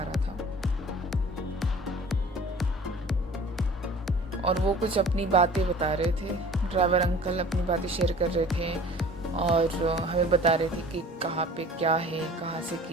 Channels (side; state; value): both; normal; correlation 0.46